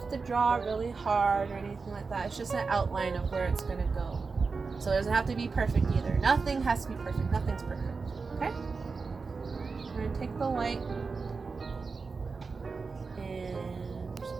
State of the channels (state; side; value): quieter; left; 4.6 dB